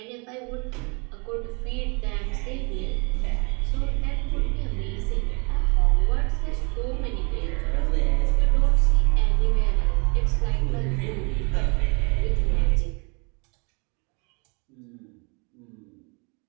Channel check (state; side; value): quieter; left; 32.8 dB